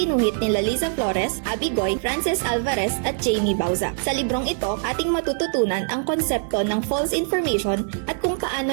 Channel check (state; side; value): silent; left; digital silence